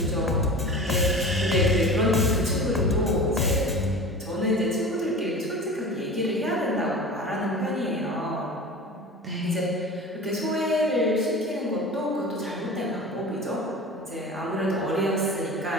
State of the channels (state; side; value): normal; both; correlation 0.35